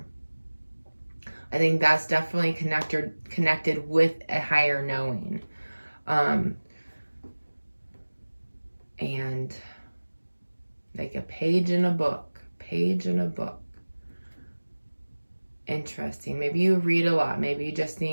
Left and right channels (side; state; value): both; inverted; correlation -1.00